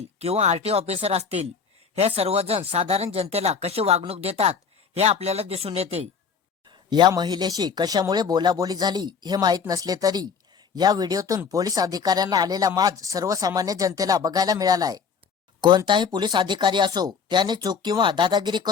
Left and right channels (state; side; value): quieter; right; 6.0 dB